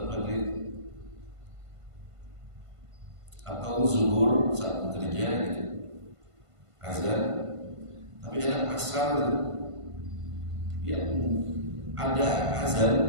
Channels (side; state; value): left; late; 1.5 ms